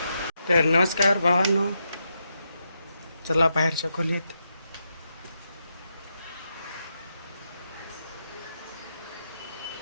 तर नमस्कार भावांनो, चला बाहेरच्या खोलीत.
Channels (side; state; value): both; inverted; correlation -0.83